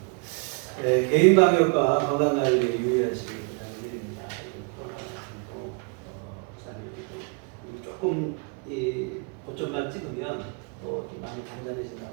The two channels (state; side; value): quieter; left; 34.0 dB